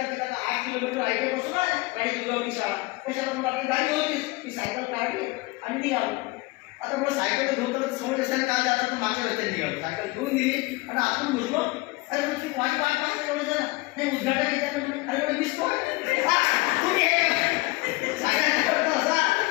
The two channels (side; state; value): right; quieter; 23.1 dB